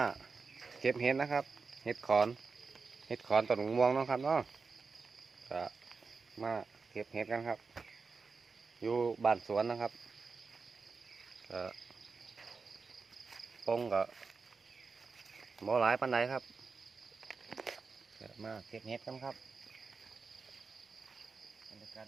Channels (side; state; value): left; quieter; 4.7 dB